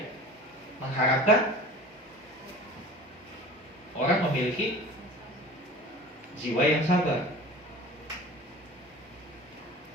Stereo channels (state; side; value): normal; both; correlation 0.39